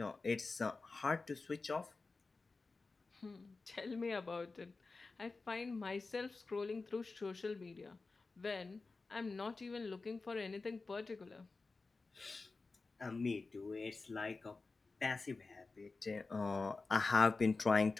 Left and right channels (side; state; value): right; quieter; 3.9 dB